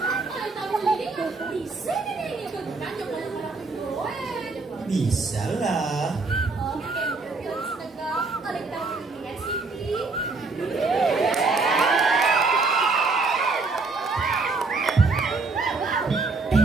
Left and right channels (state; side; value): quieter; left; 3.9 dB